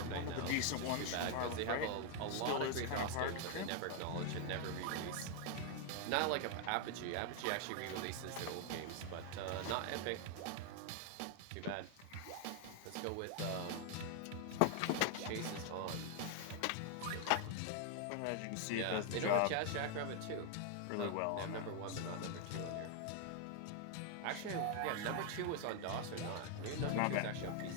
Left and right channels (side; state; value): both; different; correlation 0.00